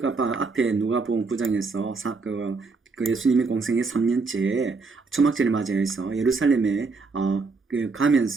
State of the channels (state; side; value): quieter; left; 4.2 dB